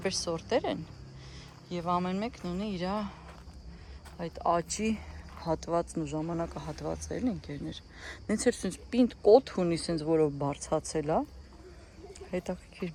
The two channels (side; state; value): both; identical; correlation 1.00